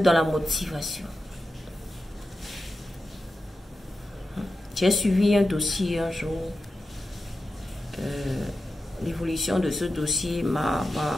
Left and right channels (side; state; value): both; normal; correlation 0.91